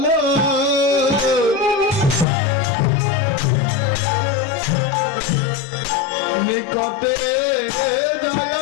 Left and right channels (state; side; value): drops out; right; at 2.2 s